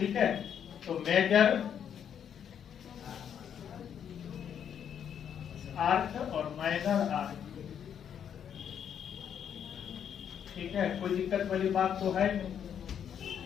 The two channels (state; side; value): quieter; right; 8.6 dB